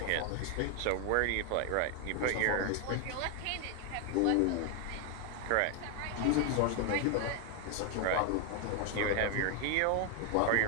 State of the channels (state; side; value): different; both; correlation 0.01